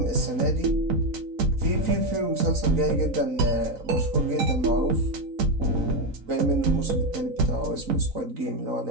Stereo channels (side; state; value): left; late; 3.9 ms